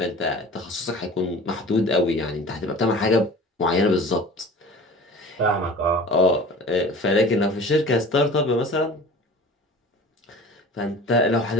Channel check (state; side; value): normal; both; correlation 0.40